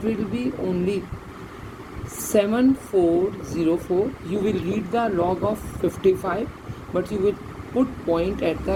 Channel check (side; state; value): both; identical; correlation 1.00